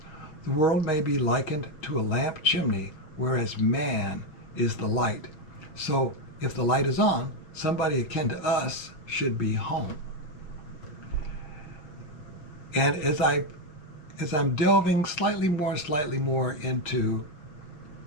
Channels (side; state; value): right; late; 6.4 ms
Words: The world may be likened to a lamp chimney, whereas man is the light. So if the light is on, somebody akin to us should be home." And as I'm delving slightly more into